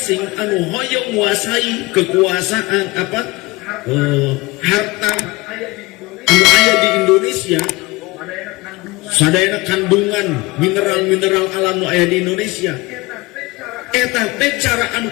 anu hoyong nguasai kekuasaan harta anu aya di Indonesia, sadayana kandungan mineral-mineral alam nu aya di Indonesia. Eta teh cara anu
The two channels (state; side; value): quieter; right; 22.4 dB